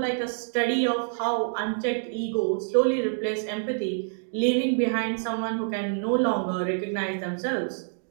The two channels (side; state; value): left; silent; digital silence